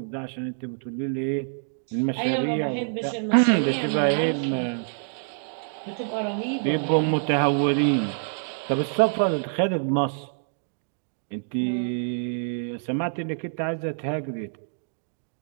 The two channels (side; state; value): left; silent; digital silence